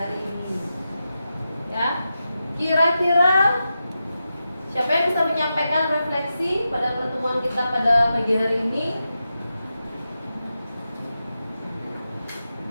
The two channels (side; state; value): both; inverted; correlation -0.90